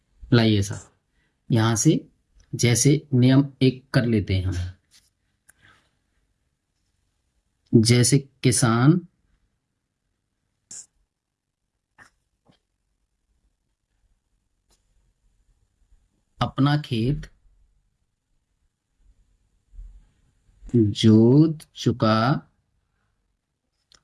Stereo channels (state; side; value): identical; both; correlation 1.00